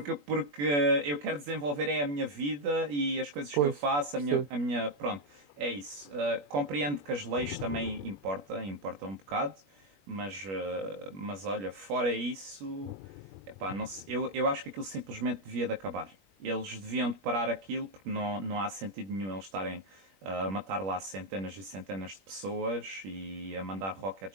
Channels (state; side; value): late; left; 21 ms